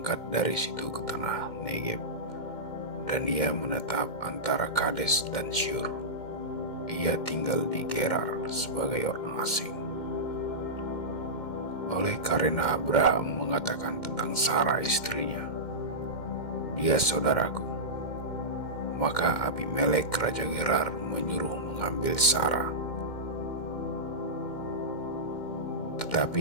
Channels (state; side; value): late; right; 2.1 ms